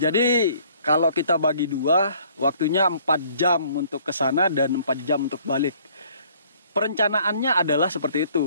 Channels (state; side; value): inverted; both; correlation -0.59